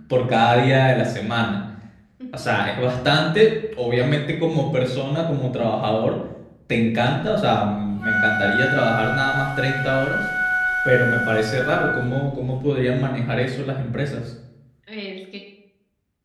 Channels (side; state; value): both; identical; correlation 1.00